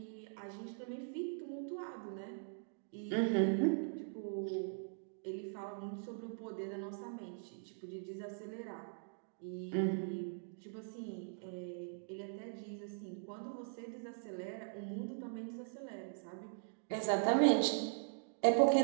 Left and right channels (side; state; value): left; silent; digital silence